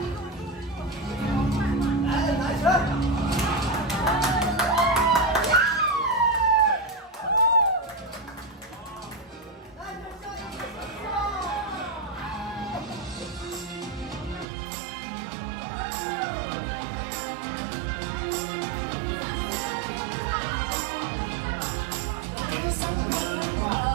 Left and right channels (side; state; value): left; drops out; at 14.5 s